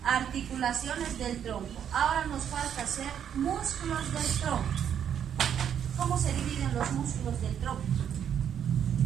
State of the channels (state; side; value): quieter; left; 8.9 dB